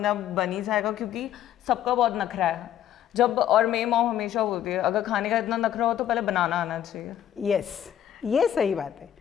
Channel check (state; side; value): quieter; right; 10.9 dB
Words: आप बन ही जाएगा, क्योंकि सबका बहुत नखरा है जब, और मेरी मॉम हमेशा बोलती है अगर खाने का इतना नखरा हो तो पहले बनाना आना चाहिए। यस, ये सही बात है।